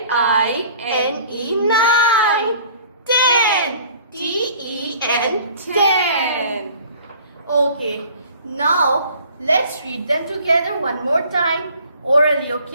9. 10, T-E-N, 10. Okay, now let's read them together one more time orally,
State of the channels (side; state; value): both; inverted; correlation -0.50